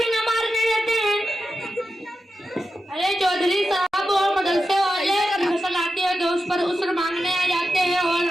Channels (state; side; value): normal; both; correlation 0.90